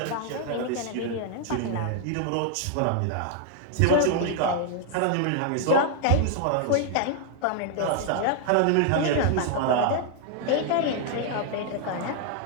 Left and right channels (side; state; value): both; different; correlation 0.00